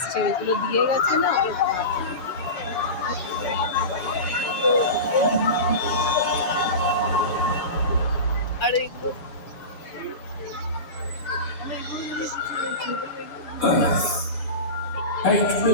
ওইগুলো দিয়ে গেছে না ওগুলো আর এগুলো Earth. 8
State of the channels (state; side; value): late; right; 7.3 ms